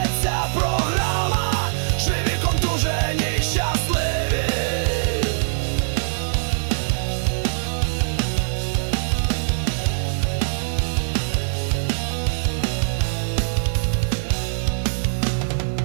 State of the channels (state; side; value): silent; left; digital silence